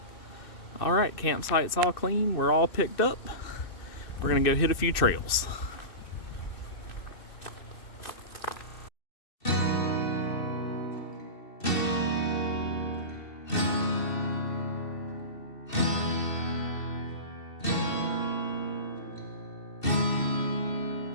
All right, campsite's all clean. We're all picked up. We're gonna go hit a few trails.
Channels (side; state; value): right; late; 2.7 ms